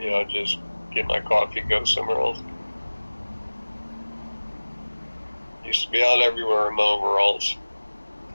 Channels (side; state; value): both; inverted; correlation -1.00